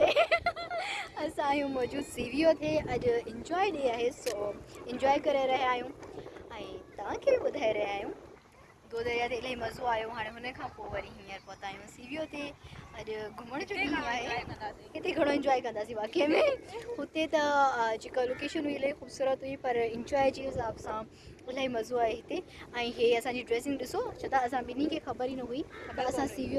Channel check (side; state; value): both; identical; correlation 1.00